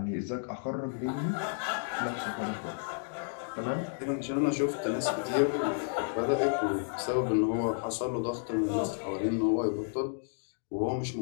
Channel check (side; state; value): right; silent; digital silence